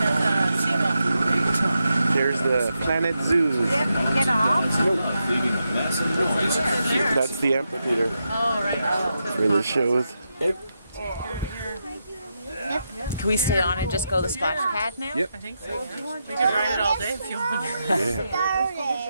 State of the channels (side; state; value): both; inverted; correlation -0.86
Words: a seagull. Great time. There's the Planet Zoo. Get off? Leaving a massive noise. There. That's the amphitheater Oh, right. where the shows. Can we stay on and just go to the splash pad now? Yep. I think so. Yeah. We could ride it all day if you want.